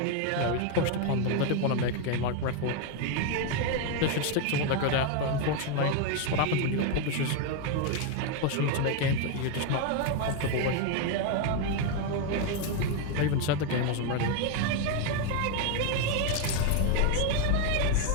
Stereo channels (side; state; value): both; different; correlation 0.01